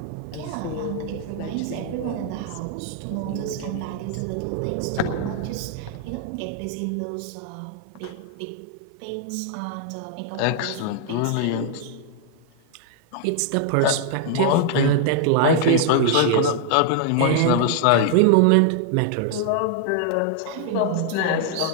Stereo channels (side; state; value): both; different; correlation 0.00